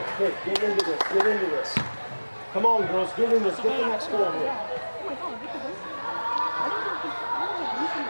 Okay, get into this. Get into this. Come on, girls. Get in this. Get the next goal here.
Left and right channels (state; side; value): inverted; both; correlation -1.00